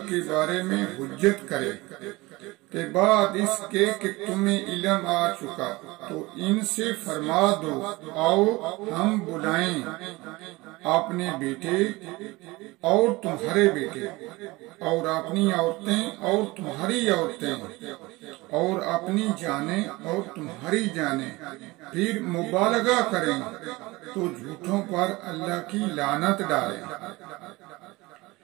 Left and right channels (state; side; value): quieter; left; 21.8 dB